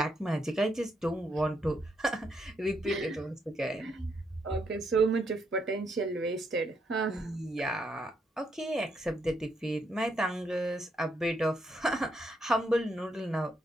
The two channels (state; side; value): normal; both; correlation 0.77